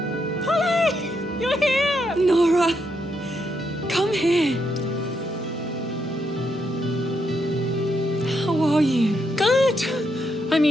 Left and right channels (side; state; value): both; normal; correlation 0.79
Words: Polly! You're here! Nora! Come here! How are you? Good! I